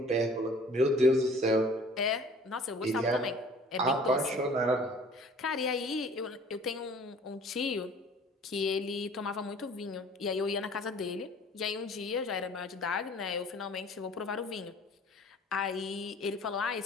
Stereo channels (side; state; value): both; normal; correlation 0.50